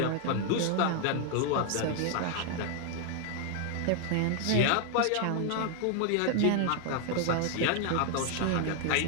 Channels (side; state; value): both; different; correlation 0.00